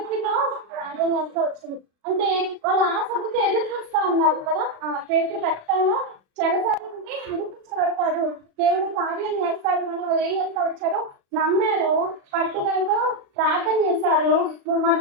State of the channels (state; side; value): late; left; 36 ms